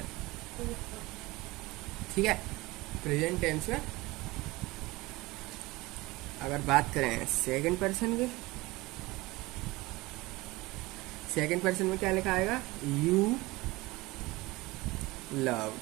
ठीक है। प्रेजेंट टेंस में अगर बात करें सेकंड पर्सन की, सेकंड पर्सन में क्या लिखा आएगा? You loved.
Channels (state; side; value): quieter; left; 21.3 dB